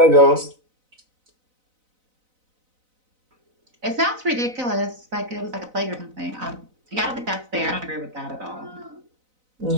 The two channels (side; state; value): left; late; 4.0 ms